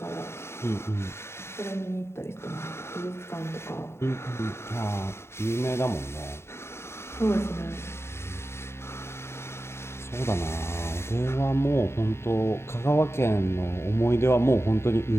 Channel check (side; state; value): right; late; 0.12 ms